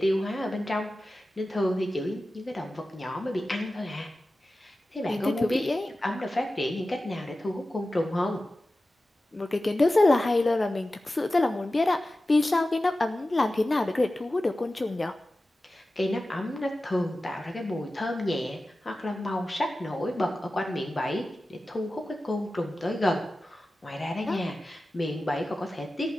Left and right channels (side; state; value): both; normal; correlation 0.95